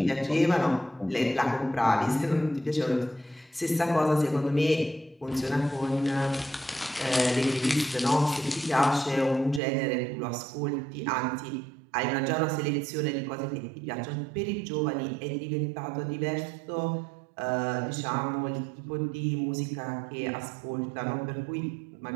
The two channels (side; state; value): left; drops out; at 9.6 s